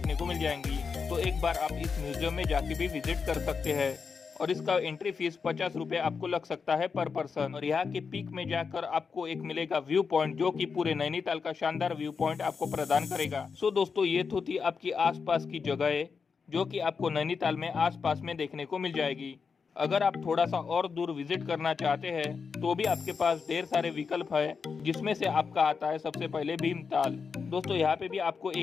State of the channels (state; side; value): quieter; right; 5.5 dB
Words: को मिल जाएंगी। तो एक बार आप इस म्यूजियम में जाके भी विजिट कर सकते हैं और इसका एंट्री फीस 50 रुपए आपको लग सकता है पर पर्सन। और यहाँ के पीक में जाकर आपको एक मिलेगा व्यू पॉइंट, जो कि पूरे नैनीताल का शानदार व्यू पॉइंट आपको प्रदान करेगा। सो दोस्तों, ये तो थी आपकी आसपास की जगह, जो कि आपको नैनीताल में आसपास में देखने को मिल जाएगी। अगर आप थोड़ा सा और दूर विजिट करना चाहते हैं तो भी आपके पास ढेर सारे विकल्प है, जिसमें से आपका आता है सबसे पहले भीमताल। दोस्तों, यहाँ पे भी आपको